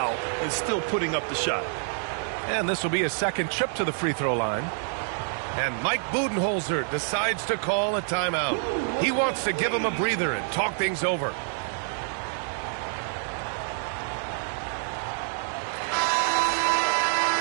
and still putting up the shot. And this will be a second trip to the free throw line. And Mike Budenholzer decides to call a timeout. He wants to give him a breather and talk things over.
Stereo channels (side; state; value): left; silent; 60 dB below the other